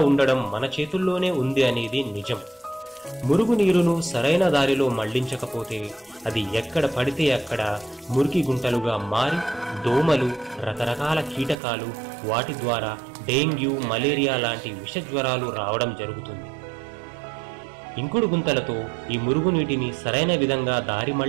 ఉండడం మన చేతుల్లోనే ఉంది అనేది నిజం. మురుగునీరును సరైన దారిలో మళ్లించకపోతే అది ఎక్కడ పడితే అక్కడ మురికి గుంటలుగా మారి దోమలు, రకరకాల కీటకాలు, వాటి ద్వారా డెంగ్యూ, మలేరియా లాంటి విషజ్వరాలు రావడం జరుగుతుంది. ఇంకుడు గుంతలతో ఈ మురుగునీటిని సరైన విధంగా దారి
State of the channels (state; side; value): drops out; left; at 11.6 s